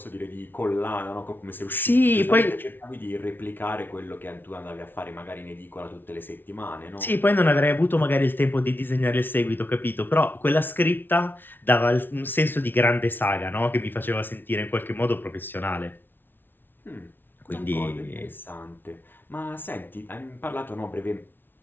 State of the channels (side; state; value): right; late; 0.098 ms